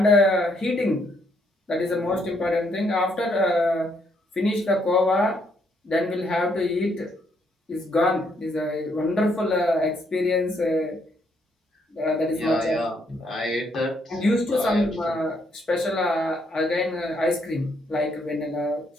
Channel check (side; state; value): both; normal; correlation 0.72